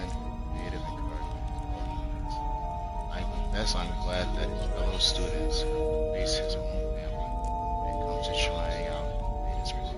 creative encouragement, all he needs. I confess I'm glad that his fellow students face his own family when it comes to trying out latest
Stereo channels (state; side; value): identical; both; correlation 1.00